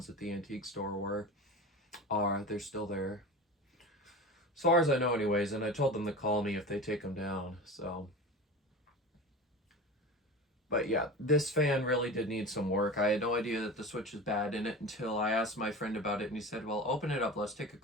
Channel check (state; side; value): normal; both; correlation 0.32